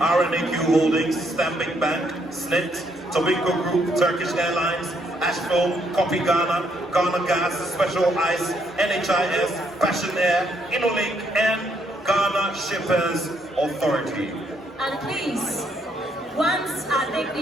Holdings, Stanbic Bank, SNIT, Tobinco Group, Turkish Airlines, Ashfilm, Copy Ghana, Ghana Gas, Special Ice, NHIS, Passion Air, InnoLink, and Ghana Shippers Authority. And please, once our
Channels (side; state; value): both; normal; correlation 0.72